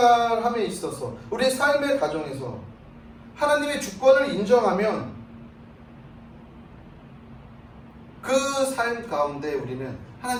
있어서, 우리의 삶의 가정에서 하나님의 주권을 인정하면 그 삶 가운데 우리는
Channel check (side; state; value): both; identical; correlation 1.00